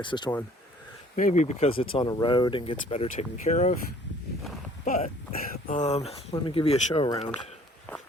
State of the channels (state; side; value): normal; both; correlation 0.55